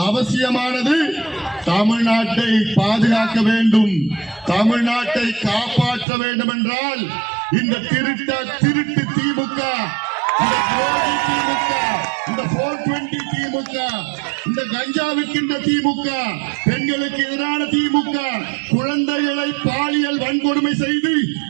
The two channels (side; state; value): left; drops out; at 6.1 s